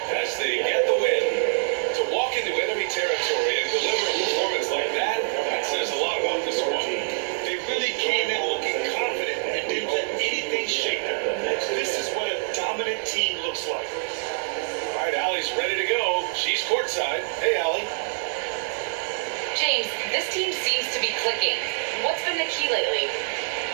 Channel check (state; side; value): silent; left; digital silence